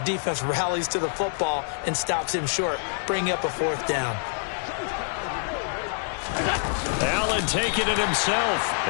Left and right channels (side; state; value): right; silent; 61 dB below the other